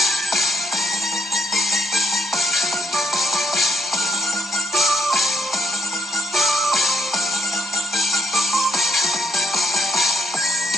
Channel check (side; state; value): both; normal; correlation 0.72